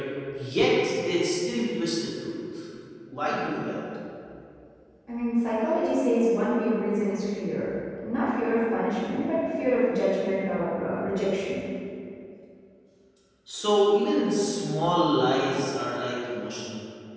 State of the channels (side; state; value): both; identical; correlation 1.00